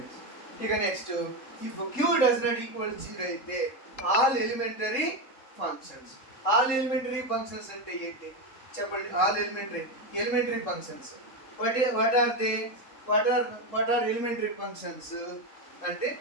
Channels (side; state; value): right; late; 3.8 ms